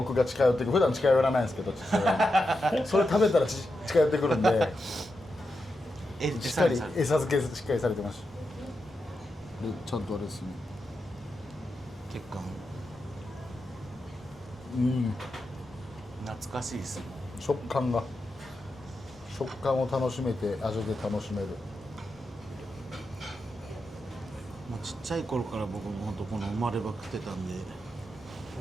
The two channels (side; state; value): both; normal; correlation 0.88